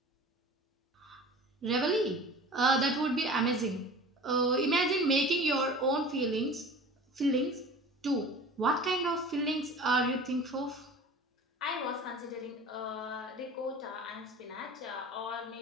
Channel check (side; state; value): both; normal; correlation 0.40